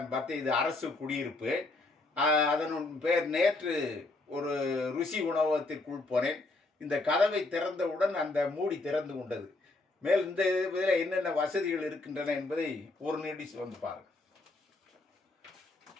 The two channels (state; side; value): quieter; right; 3.1 dB